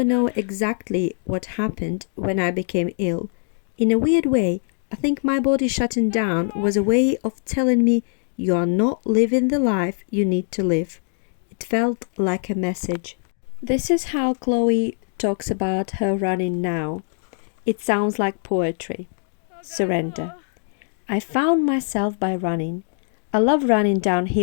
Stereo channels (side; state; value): right; silent; 64 dB below the other